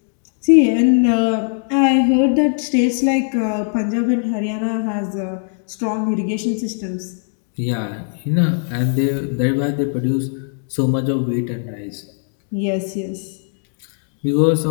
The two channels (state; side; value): silent; right; 66 dB below the other